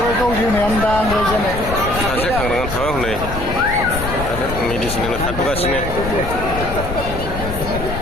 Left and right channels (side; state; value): left; noise; rumble, 6 dB below the sound